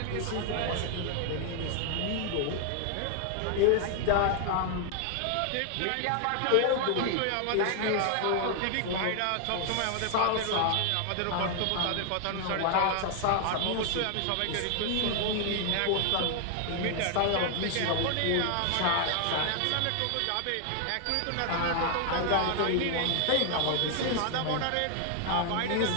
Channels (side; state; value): both; different; correlation 0.00